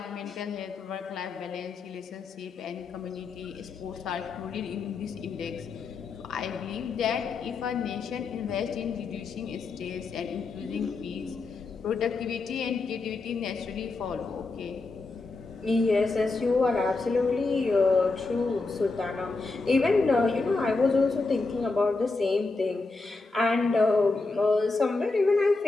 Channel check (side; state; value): right; quieter; 3.7 dB